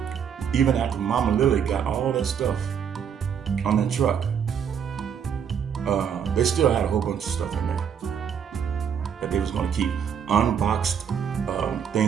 even after Mama Lily got all that stuff on that truck, they still had a whole bunch of stuff in there that they was going to keep. Unboxed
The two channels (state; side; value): quieter; left; 7.8 dB